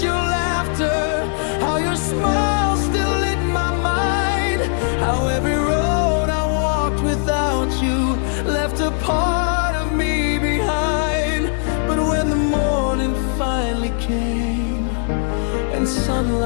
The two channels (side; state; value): right; silent; 61 dB below the other